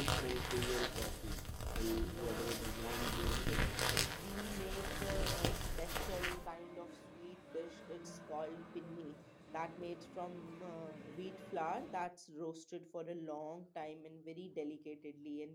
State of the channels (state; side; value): identical; both; correlation 1.00